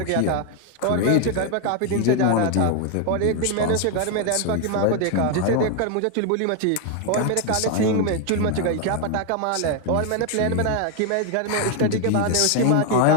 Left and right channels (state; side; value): different; both; correlation 0.01